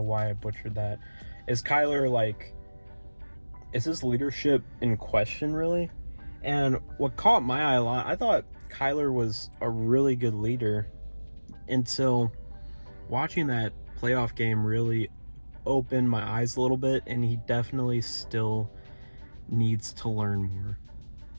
why I butchered that. Is Kyler, is his leadership in question, really? And what caught my eye a lot, I thought Kyler was a really good leader until watching that playoff game really opened my eyes a little bit, and he definitely still needs to learn more.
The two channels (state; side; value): inverted; both; correlation -1.00